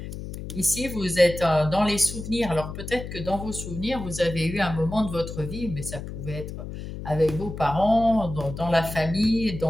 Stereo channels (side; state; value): left; noise; hum, 9 dB below the sound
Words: Ici, vous êtes dans les souvenirs. Alors, peut-être que dans vos souvenirs, vous avez eu un moment de votre vie, mais ça pouvait être avec vos parents, dans la famille,